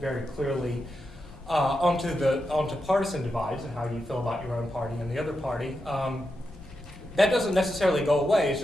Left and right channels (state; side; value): normal; both; correlation 0.87